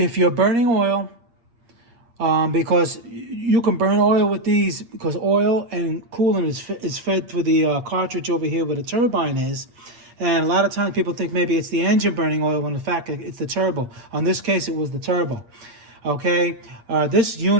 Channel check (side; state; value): left; late; 8.5 ms